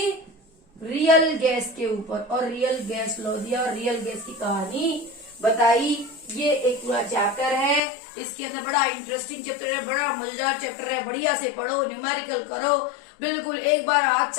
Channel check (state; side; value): drops out; right; at 7.8 s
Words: रियल गैस के ऊपर, और रियल गैस लॉ दिया और रियल गैस की कहानी बताई। ये एक पूरा चैप्टर है, इसके अंदर बड़ा इंटरेस्टिंग चैप्टर है, बड़ा मजेदार चैप्टर है, बढ़िया से पढ़ो, न्यूमेरिकल करो, बिल्कुल एक बार हाथ